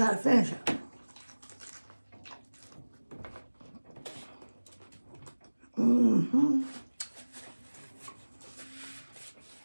to finish it. Mm-hmm.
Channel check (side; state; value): both; inverted; correlation -1.00